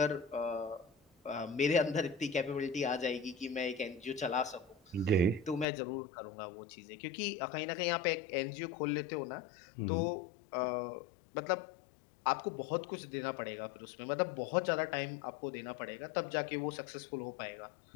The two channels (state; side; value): drops out; right; at 5.7 s